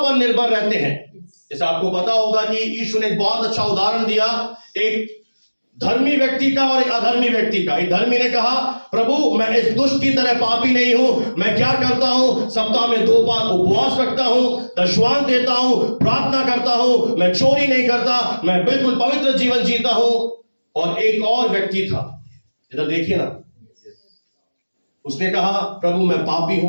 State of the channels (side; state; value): both; inverted; correlation -1.00